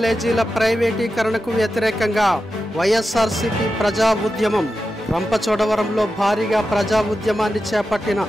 ప్రైవేటీకరణకు వ్యతిరేకంగా వైఎస్ఆర్సీపీ ప్రజా ఉద్యమం. రంపచోడవరంలో భారీగా ప్రజా ఉద్యమాన్ని చేపట్టిన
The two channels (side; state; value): both; normal; correlation 0.91